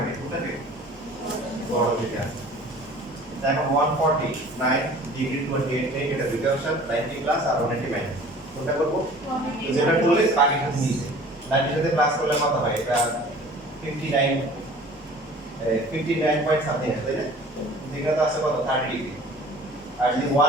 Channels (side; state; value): both; normal; correlation 0.47